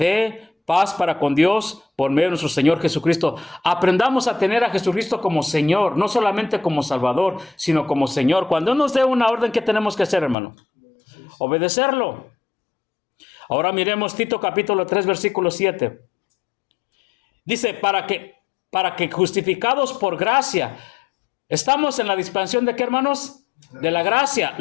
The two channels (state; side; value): drops out; right; at 10.4 s